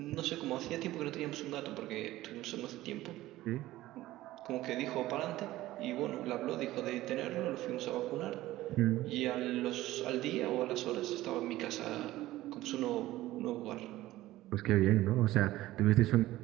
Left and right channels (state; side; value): quieter; left; 16.3 dB